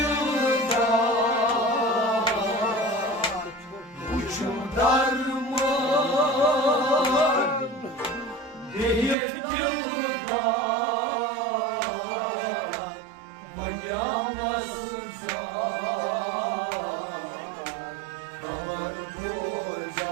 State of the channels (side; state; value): left; drops out; at 9.2 s